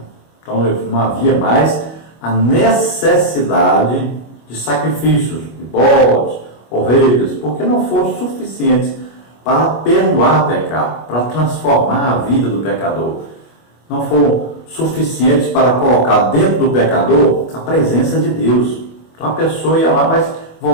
Então não havia mais a necessidade de sacrifícios, de bodes, ovelhas, porque não foram suficientes para perdoar pecado, para transformar a vida do pecador. Não foram suficientes para colocar dentro do pecador a presença de Deus. Então a pessoa ia lá, mas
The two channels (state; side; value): late; right; 25 ms